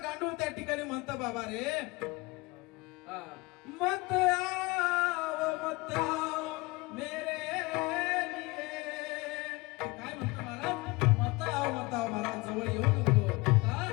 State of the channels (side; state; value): right; quieter; 24.2 dB